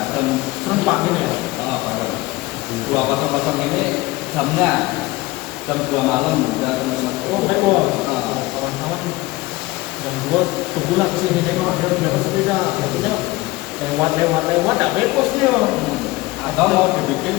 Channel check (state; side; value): quieter; right; 20.2 dB